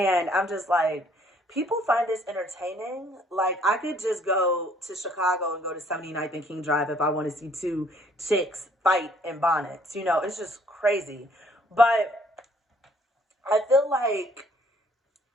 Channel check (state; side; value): normal; both; correlation 0.62